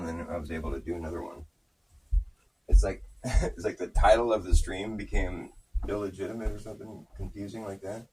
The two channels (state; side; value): identical; both; correlation 1.00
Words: then I was able to do another one. It's like it's like the title of the stream became illegitimate or something confusing like that.